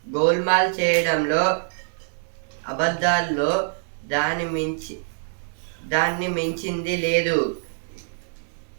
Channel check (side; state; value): left; silent; digital silence